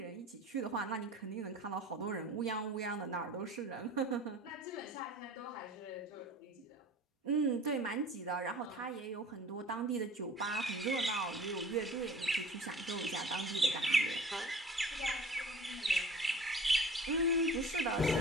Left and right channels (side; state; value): both; normal; correlation 0.44